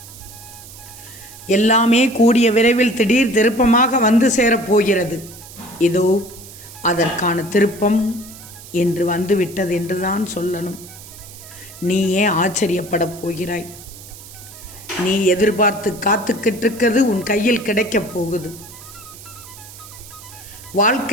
எல்லாமே கூடிய விரைவில் திடீர் திருப்பமாக வந்து சேரப்போகிறது. இதோ அதற்கான திருப்பம் என்று வந்துவிட்டது என்றுதான் சொல்லணும். நீ ஏன் ஆச்சரியப்படப் போகிறாய்? நீ எதிர்பார்த்து காத்துக்கிட்டிருக்கிறது உன் கையில் கிடைக்கப் போகுது.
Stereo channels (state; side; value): noise; right; hiss, 17 dB below the sound